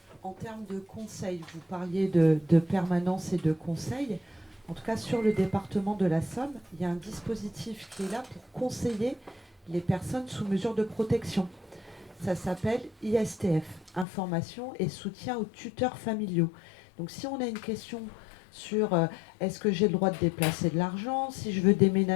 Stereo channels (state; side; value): drops out; right; at 14.1 s